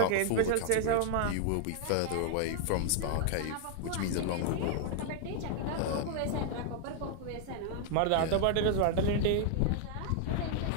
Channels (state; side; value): different; both; correlation 0.00